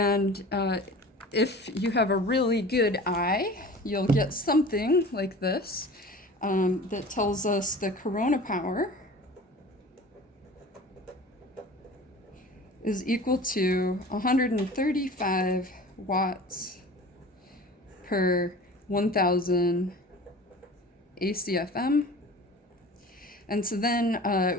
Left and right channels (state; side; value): normal; both; correlation 0.40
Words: if you have a really good eye, you'll get something like this that tells us the corona power is equal to 135 watts per 1,000 ACFM. And so then